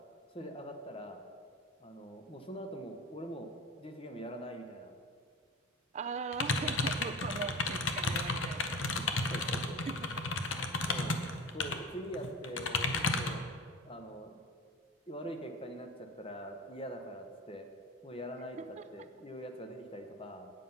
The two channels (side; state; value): both; normal; correlation 0.34